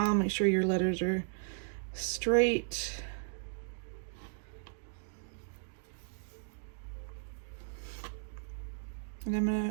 make sure your letters are straight. And I'm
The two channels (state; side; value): silent; left; digital silence